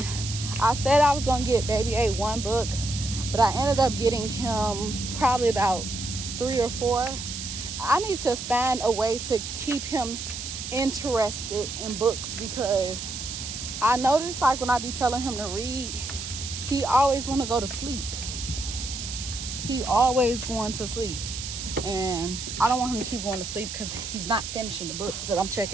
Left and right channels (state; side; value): noise; right; hiss, 7 dB below the sound